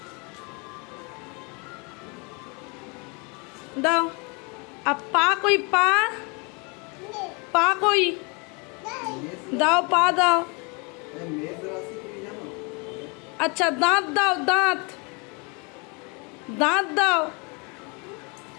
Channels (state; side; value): quieter; right; 31.5 dB